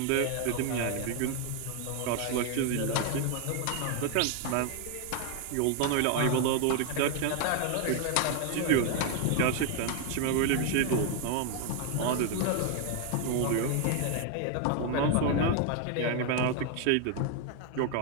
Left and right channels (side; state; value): both; different; correlation 0.01